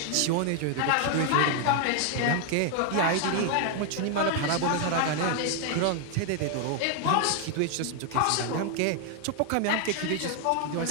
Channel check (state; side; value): different; both; correlation 0.00